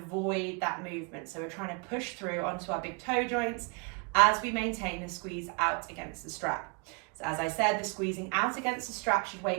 that movement. So we're trying to push through onto our big toe joints as we maintain the squeeze out against the strap. So as I said, the squeezing out against the strap should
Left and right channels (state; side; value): quieter; left; 32.4 dB